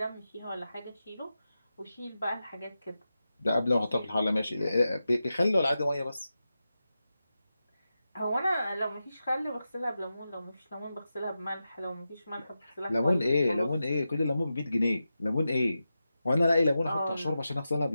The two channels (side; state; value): both; inverted; correlation -0.91